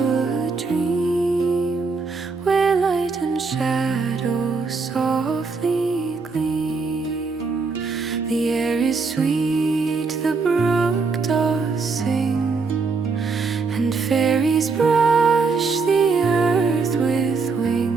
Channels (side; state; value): left; quieter; 4.4 dB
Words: a dream, where light and shadow softly gleam. The air is sweet, the brook does sing, and fairies brush the earth with